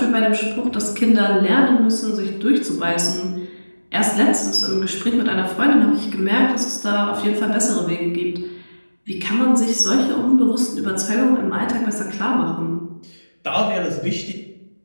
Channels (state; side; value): inverted; both; correlation -1.00